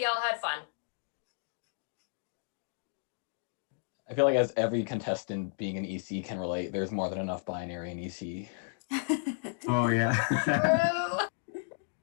y'all had fun. I feel like as every contestant being an EC can relate, there's more than enough binary in EC. Oh yeah.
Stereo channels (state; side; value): silent; right; digital silence